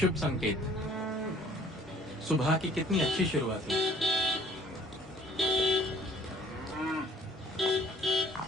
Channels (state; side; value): normal; both; correlation 0.55